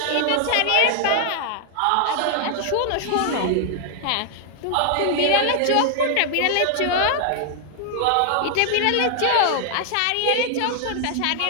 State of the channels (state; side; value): different; both; correlation 0.00